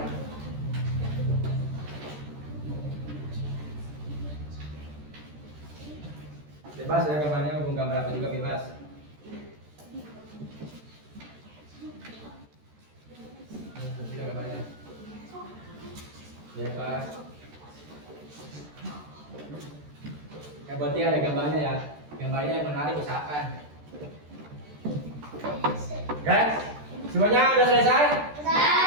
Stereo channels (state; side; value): late; left; 13 ms